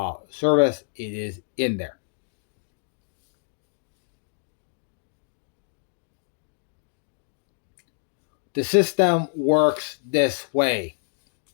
service, it is in there. The system works this way.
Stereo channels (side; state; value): right; silent; 60 dB below the other